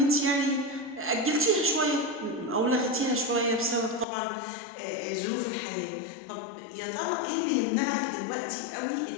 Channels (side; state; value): right; drops out; at 4.0 s